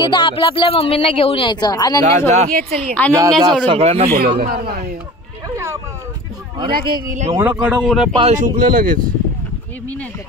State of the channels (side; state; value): both; normal; correlation 0.39